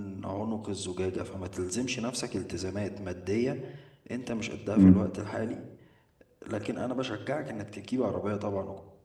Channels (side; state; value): both; identical; correlation 1.00